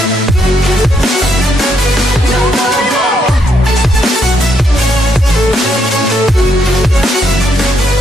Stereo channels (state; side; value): normal; both; correlation 0.75